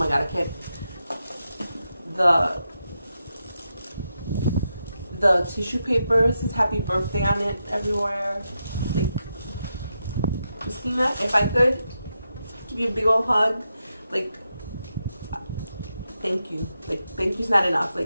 god, I can't. The tissue paper says happy birthday on it everywhere. Like, Christina, if I could give you a big old hug, like, thank you. Like, thank you's not enough.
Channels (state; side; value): inverted; both; correlation -0.86